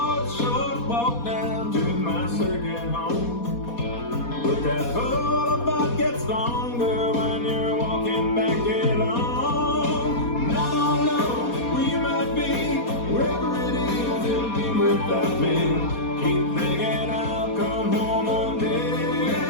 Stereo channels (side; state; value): right; late; 4.2 ms